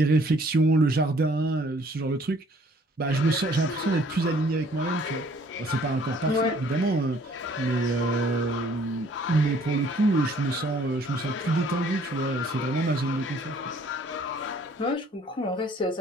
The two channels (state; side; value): normal; both; correlation 0.59